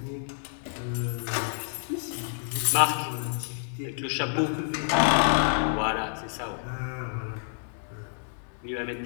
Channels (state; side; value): silent; right; digital silence